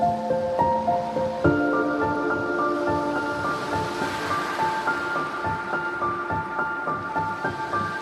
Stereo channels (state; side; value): identical; both; correlation 1.00